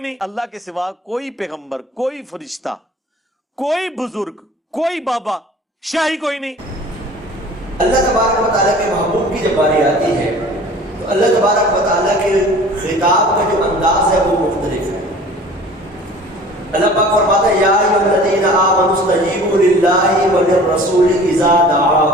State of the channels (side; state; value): both; normal; correlation 0.45